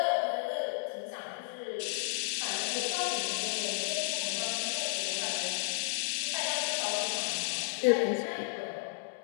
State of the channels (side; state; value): right; silent; digital silence